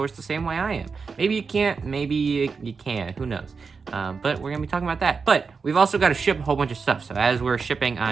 the same way I am. Maybe you can't, maybe you can, who knows? But we're going to be talking about that. But we've also got to ship a whole bunch of stuff. So as we're shipping,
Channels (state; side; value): quieter; left; 5.1 dB